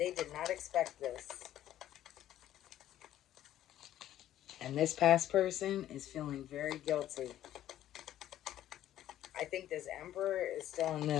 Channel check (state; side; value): quieter; right; 12.4 dB